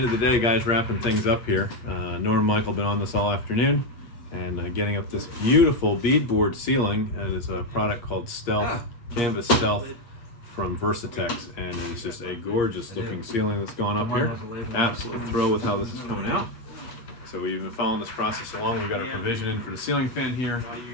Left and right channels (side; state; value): right; late; 8.5 ms